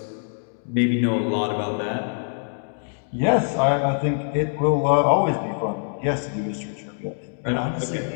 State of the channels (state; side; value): silent; right; 61 dB below the other